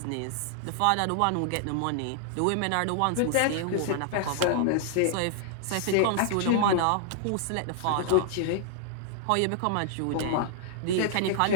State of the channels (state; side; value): different; both; correlation 0.00